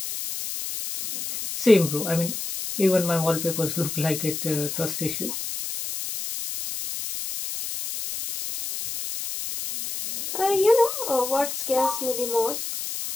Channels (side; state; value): left; noise; hiss, 6 dB below the sound